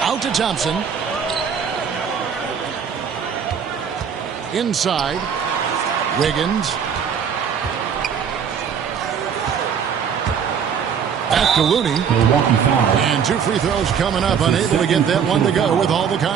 to Thompson. Inside. Wiggins. Back to Looney. Milwaukee foul. And 2 free throws coming up, unable to get that one to go with all the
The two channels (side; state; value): left; quieter; 7.3 dB